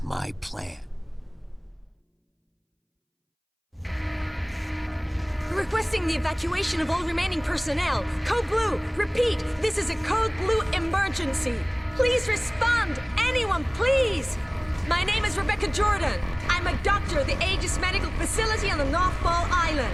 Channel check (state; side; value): identical; both; correlation 1.00